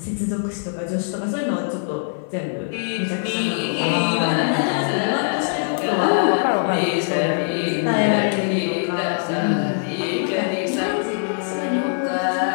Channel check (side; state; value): right; silent; 56 dB below the other